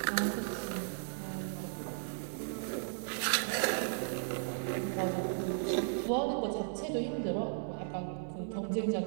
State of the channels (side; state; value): left; silent; 54 dB below the other